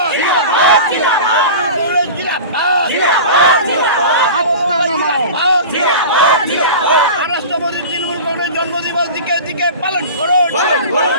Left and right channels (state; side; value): inverted; both; correlation -0.33